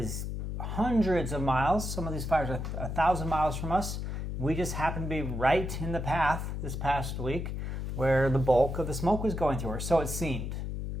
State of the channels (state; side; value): noise; left; hum, 4 dB below the sound